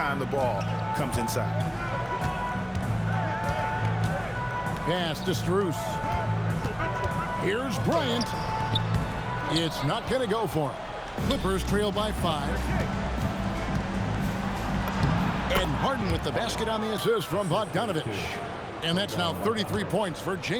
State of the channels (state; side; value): identical; both; correlation 1.00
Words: the ball comes inside. Pass to Strus. Here's Bryant. It's not going to go for him. Clippers trail by 5. And Harden with the basket on the assist from Bogdanovich. And that's now 33 points for